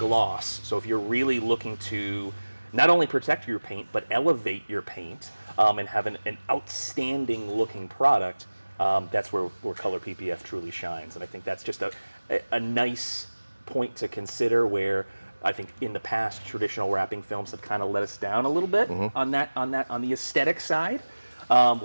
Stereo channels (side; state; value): both; inverted; correlation -1.00